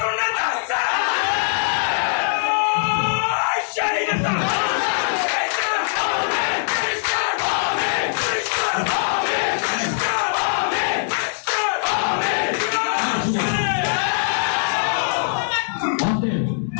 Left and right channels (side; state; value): right; silent; digital silence